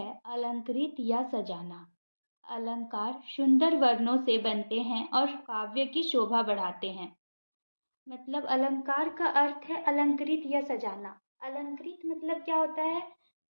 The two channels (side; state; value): both; inverted; correlation -1.00